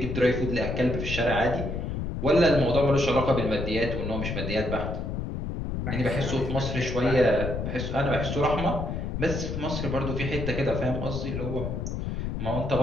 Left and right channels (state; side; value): noise; left; rumble, 3 dB below the sound